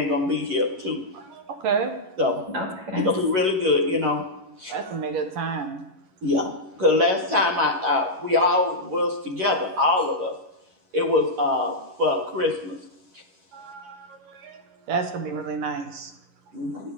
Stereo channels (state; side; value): late; left; 11 ms